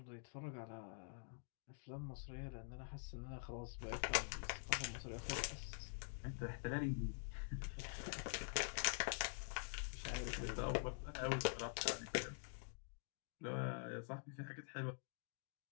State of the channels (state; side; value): silent; right; digital silence